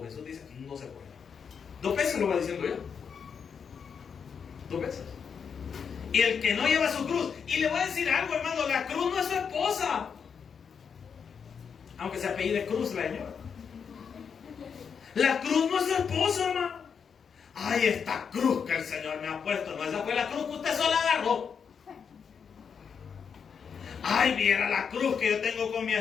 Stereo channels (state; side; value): quieter; right; 6.6 dB